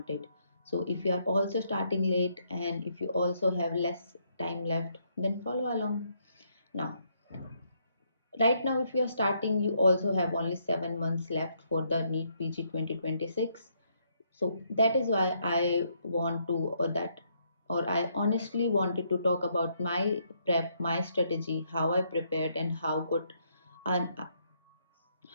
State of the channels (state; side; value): inverted; both; correlation -0.73